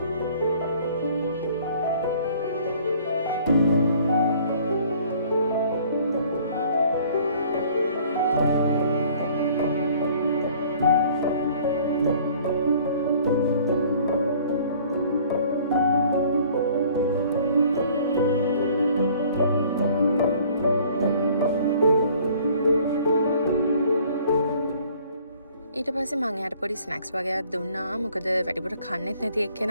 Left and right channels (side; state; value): both; inverted; correlation -0.54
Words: ඊට පස්සේ මං එයාට පොඩි ස්නැක්ස් වගේක් දුන්නා. මොකද වැඩිපුර කන්නෙත් නැති